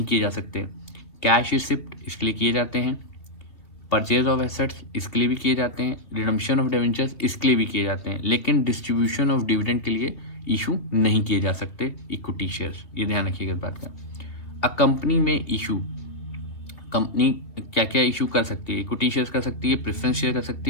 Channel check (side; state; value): right; late; 2.7 ms